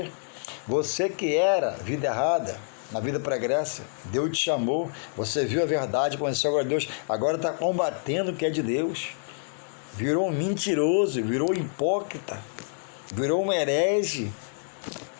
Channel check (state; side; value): silent; right; 60 dB below the other